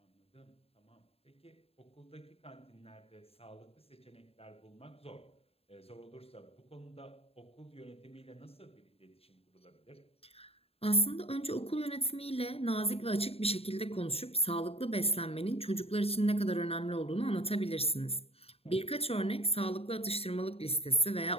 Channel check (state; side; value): late; right; 0.29 ms